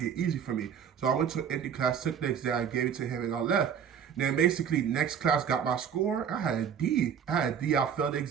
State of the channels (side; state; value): left; quieter; 7.9 dB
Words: it easy for me. So I went to an empty class, took the exam, gave it to him, and I left. Then basically next class got my score. I had a D. I failed the